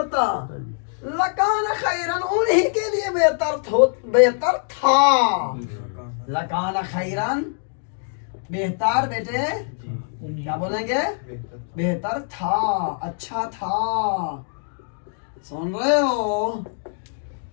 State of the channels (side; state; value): right; silent; 63 dB below the other